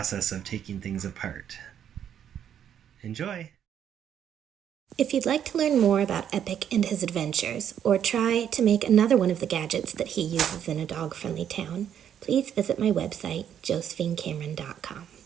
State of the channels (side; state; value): left; quieter; 9.3 dB